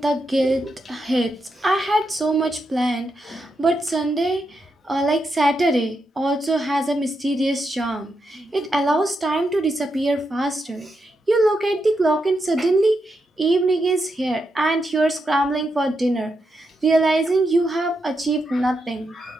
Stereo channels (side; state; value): both; normal; correlation 0.84